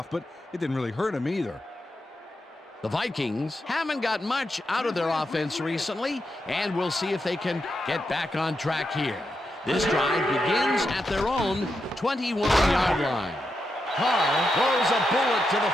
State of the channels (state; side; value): normal; both; correlation 0.85